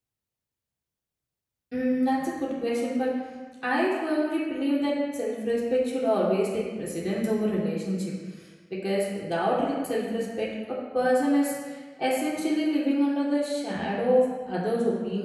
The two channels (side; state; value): both; identical; correlation 1.00